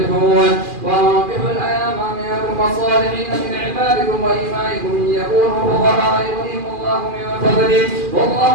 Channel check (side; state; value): left; late; 2.4 ms